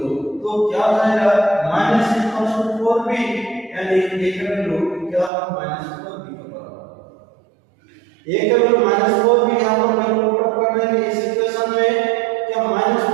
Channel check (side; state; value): left; drops out; at 5.3 s